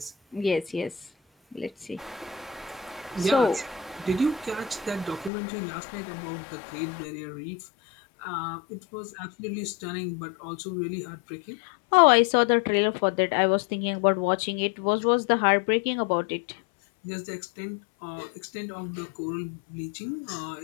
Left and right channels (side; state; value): right; drops out; at 5.3 s